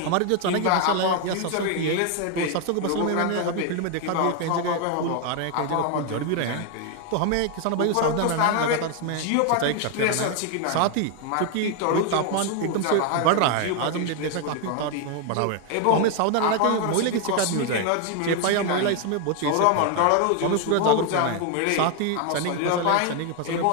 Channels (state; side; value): different; both; correlation 0.01